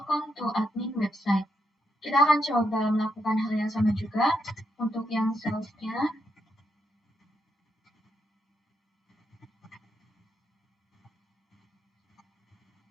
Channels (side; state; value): both; normal; correlation 0.80